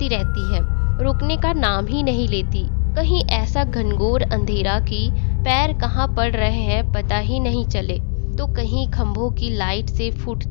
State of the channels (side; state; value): right; silent; digital silence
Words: रुकने का नाम ही नहीं लेती। कहीं ऐसा घनघोर अंधेरा कि पैर कहाँ पड़ रहे हैं पता ही नहीं चले, तो कहीं खंभों की लाइट से